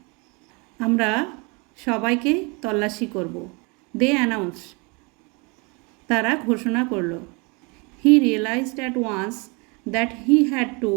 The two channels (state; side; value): quieter; left; 30.1 dB